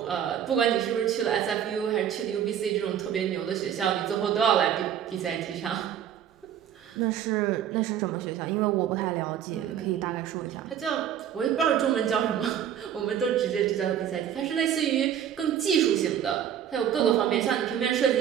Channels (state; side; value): quieter; left; 9.6 dB